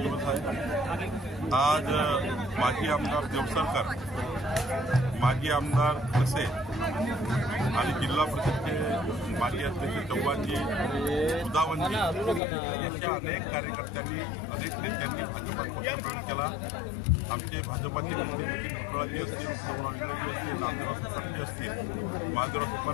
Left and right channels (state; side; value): drops out; right; at 12.4 s